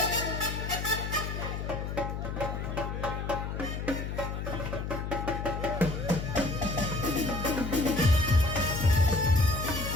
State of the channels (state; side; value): noise; left; hum, 4 dB below the sound